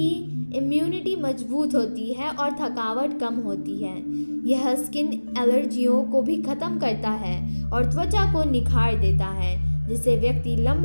इम्यूनिटी मजबूत होती है और थकावट कम होती है। यह स्किन एलर्जियों को भी खत्म करता है और त्वचा को निखार देता है, जिससे व्यक्ति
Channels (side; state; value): both; inverted; correlation -1.00